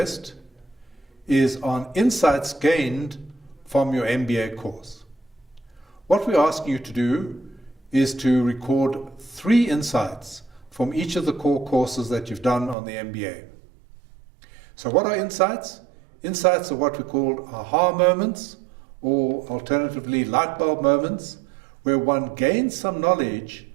is on insights gained from your MBA course. What we're asking you to do is to record 3 insights from each of the core courses that you've done on the MBA. So what are insights? Insights are what we call aha moments, or alternatively light bulb moments, where one gains some knowledge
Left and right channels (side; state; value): left; drops out; at 12.8 s